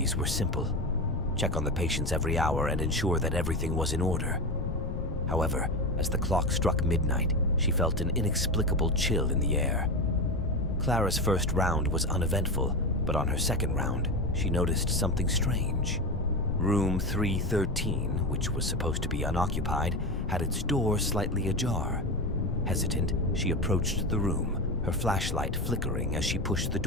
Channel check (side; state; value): left; noise; rumble, 4 dB below the sound